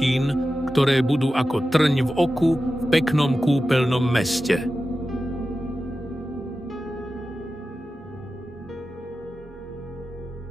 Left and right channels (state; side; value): normal; both; correlation 0.93